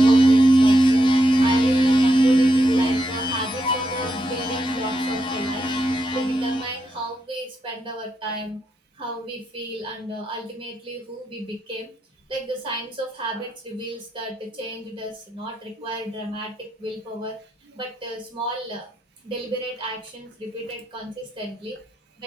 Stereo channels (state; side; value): normal; both; correlation 0.82